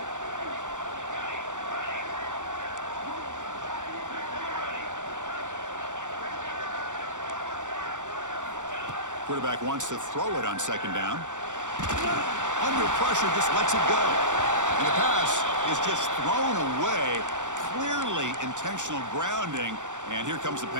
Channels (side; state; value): left; late; 0.85 ms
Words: Quarterback wants to throw it on 2nd down. Under pressure, just lets it go. And the pass is just thrown away. Clearly intentional grounding. And here comes the